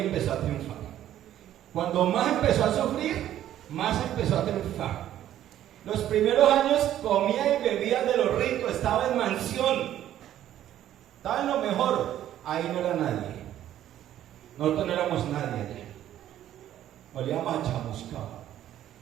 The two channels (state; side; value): quieter; left; 12.0 dB